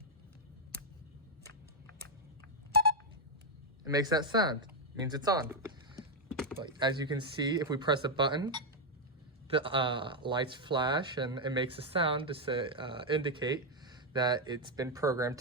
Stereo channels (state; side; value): normal; both; correlation 0.02